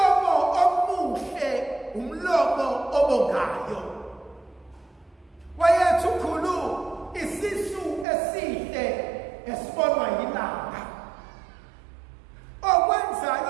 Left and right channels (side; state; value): left; drops out; at 8.1 s